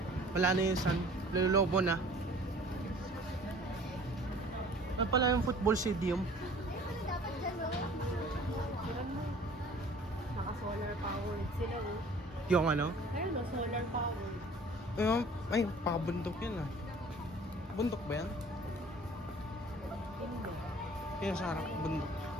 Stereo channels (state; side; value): normal; both; correlation 0.49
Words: Wala na yung sun, lululobo na. Ano pala yung football stadium? Naka-solar powered sila oh. Yung ano? Ayun oh, solar powered. Yung, ay, pakabundok yan ah. Bundok ba yan? Hindi. Kaya sa harap, bundok.